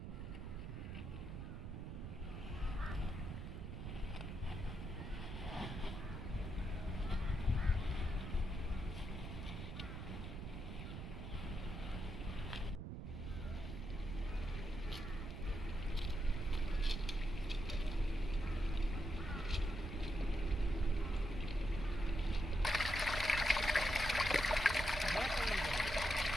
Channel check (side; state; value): right; noise; rumble, 7 dB below the sound